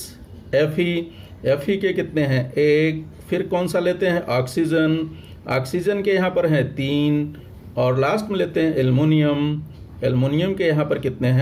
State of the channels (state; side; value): identical; both; correlation 1.00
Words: Fe के कितने हैं 1, फिर कौन सा लेते हैं ऑक्सीजन, ऑक्सीजन के यहाँ पर हैं 3 और लास्ट में लेते हैं एल्युमिनियम के यहाँ पर कितने